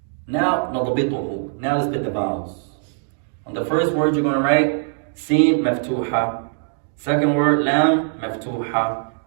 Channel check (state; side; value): silent; left; 65 dB below the other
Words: Now, نضبطه. Now let's put the vowels. On the first word you're going to write Sin, Maftuha. Second word, Lam, Maftuha.